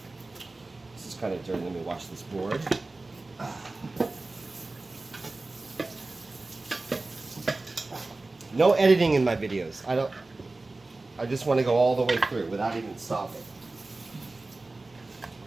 This is kind of dirty. Let me wash this board. No editing in my videos. I just want to go all the way through without even stopping.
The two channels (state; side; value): quieter; left; 3.2 dB